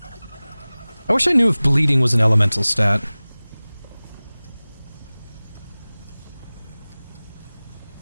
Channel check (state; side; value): inverted; both; correlation -0.99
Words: I wish I knew if bleeding was an elemental stat.